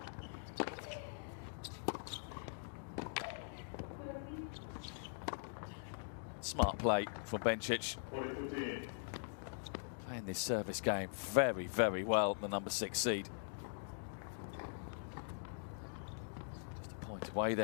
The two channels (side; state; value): right; silent; digital silence